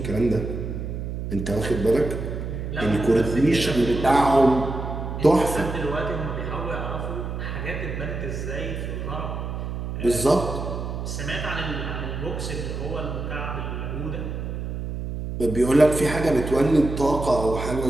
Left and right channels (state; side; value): noise; right; hum, 5 dB below the sound